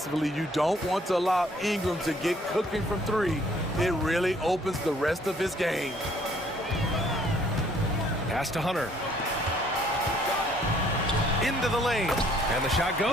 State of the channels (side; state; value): both; normal; correlation 0.62